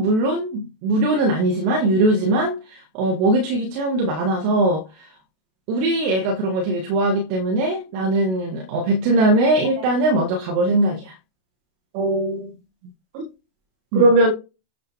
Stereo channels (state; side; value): late; left; 32 ms